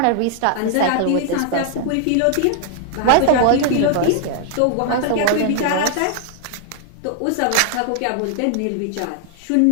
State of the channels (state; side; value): different; both; correlation 0.00